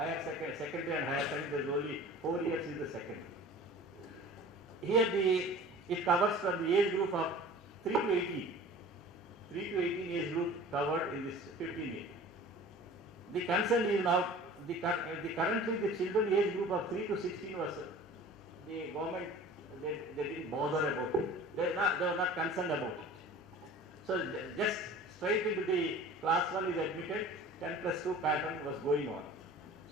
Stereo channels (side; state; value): both; normal; correlation 0.42